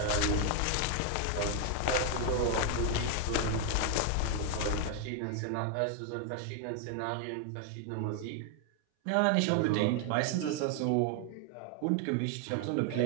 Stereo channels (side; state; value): both; different; correlation 0.00